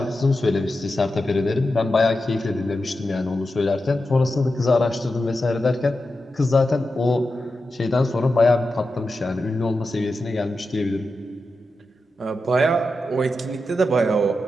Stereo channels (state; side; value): normal; both; correlation 0.90